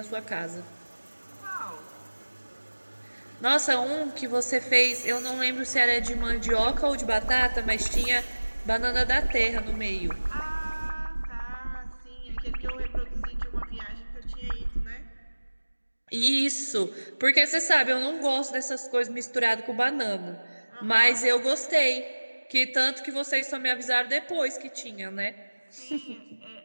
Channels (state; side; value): inverted; both; correlation -1.00